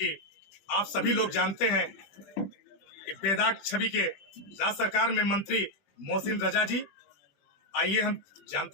आप सभी लोग जानते हैं कि बेदाग छवि के राज्य सरकार में मंत्री मोहसिन रजा जी। आइए हम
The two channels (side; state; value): right; late; 20 ms